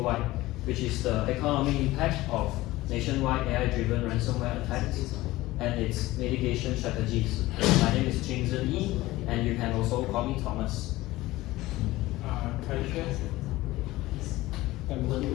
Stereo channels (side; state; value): right; quieter; 18.0 dB